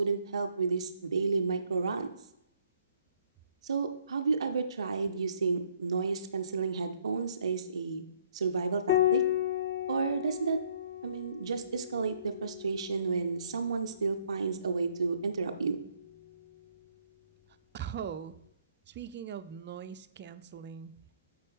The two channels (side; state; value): both; inverted; correlation -0.65